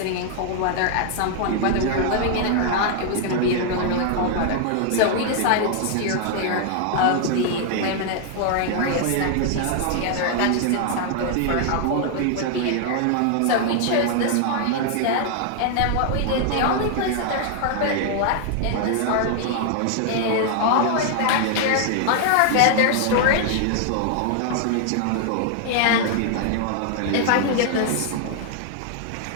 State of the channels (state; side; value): different; both; correlation 0.00